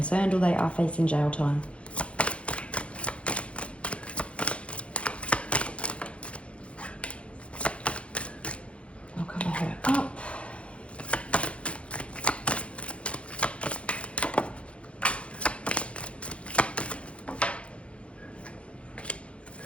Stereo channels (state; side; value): late; right; 0.061 ms